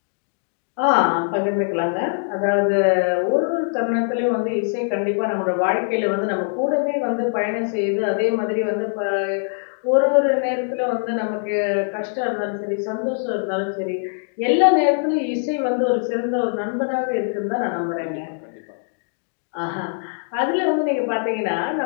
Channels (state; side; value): silent; right; 64 dB below the other